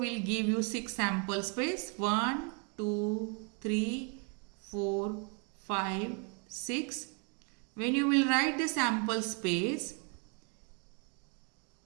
give you 6 sample space, 1, 2, 3, 4, 5, 6. When you will write the sample space,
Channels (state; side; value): quieter; left; 35.3 dB